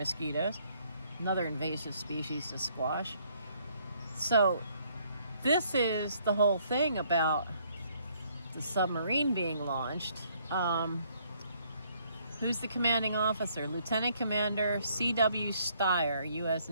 Another invasive species to squash. So, this is the whole thing about the submarine being launched. Who's the commanding officer? Lieutenant Commander C.W. Steyer, U.S.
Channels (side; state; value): both; inverted; correlation -0.67